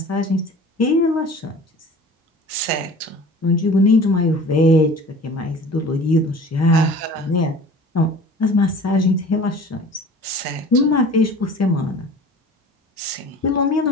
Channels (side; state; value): both; normal; correlation 0.42